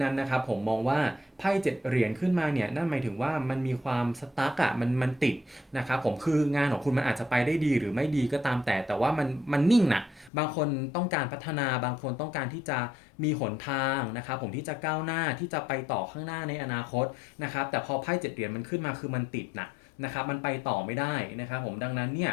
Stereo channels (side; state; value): right; drops out; at 10.3 s